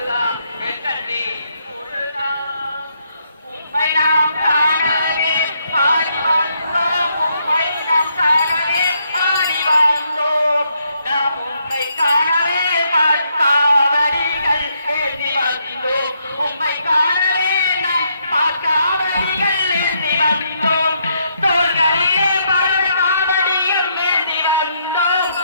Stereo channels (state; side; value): inverted; both; correlation -0.75